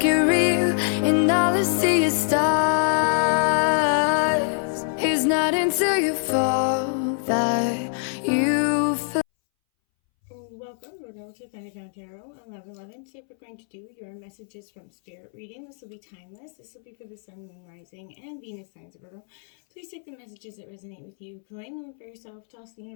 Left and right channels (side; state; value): right; silent; 62 dB below the other